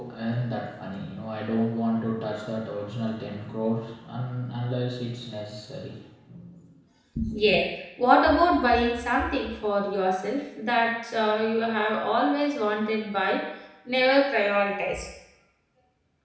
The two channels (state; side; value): identical; both; correlation 1.00